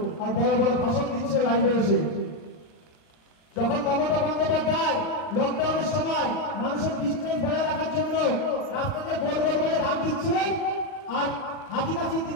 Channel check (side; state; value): right; late; 39 ms